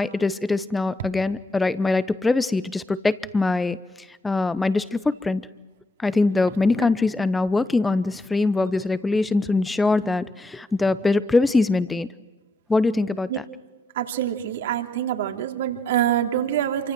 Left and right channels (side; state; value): both; normal; correlation 0.76